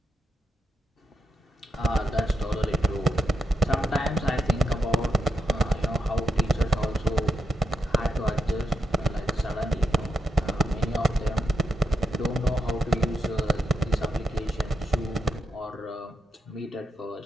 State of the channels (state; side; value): normal; both; correlation 0.84